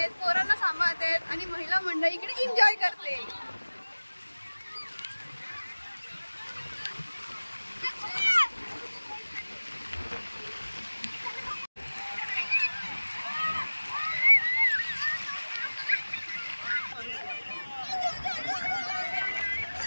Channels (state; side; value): inverted; both; correlation -1.00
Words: पोरांना सांभाळतायत आणि महिला मंडळी इकडे एन्जॉय करते.